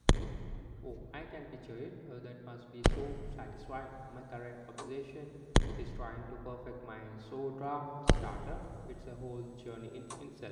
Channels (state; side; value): identical; both; correlation 1.00